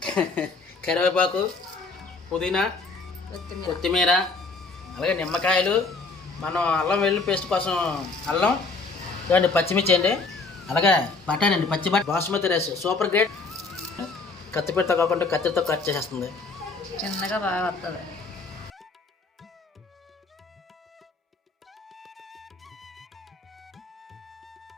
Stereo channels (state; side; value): quieter; right; 3.9 dB